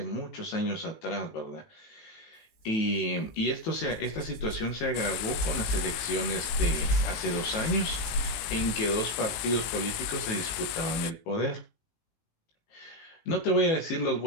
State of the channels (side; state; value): right; late; 19 ms